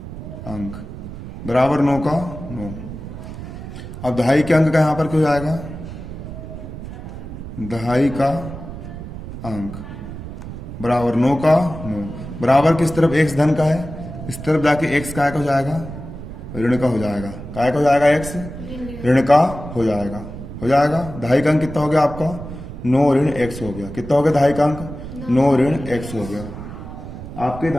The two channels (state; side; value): noise; right; rumble, 11 dB below the sound